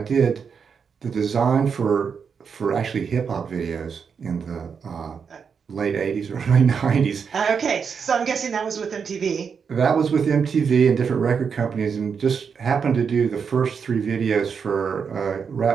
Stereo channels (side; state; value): left; quieter; 6.3 dB